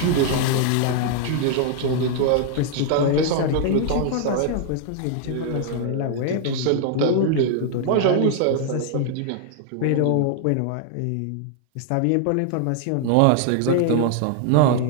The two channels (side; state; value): both; different; correlation 0.00